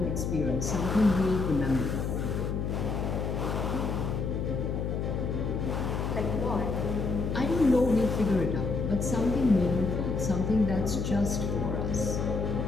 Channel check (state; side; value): noise; left; hum, 1 dB below the sound